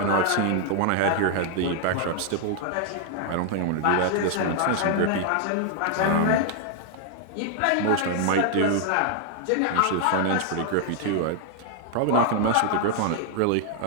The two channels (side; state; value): both; different; correlation 0.00